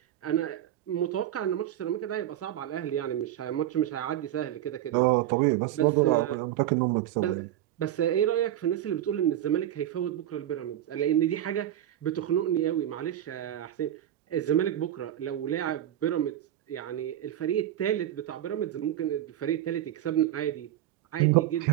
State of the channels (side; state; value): left; quieter; 12.2 dB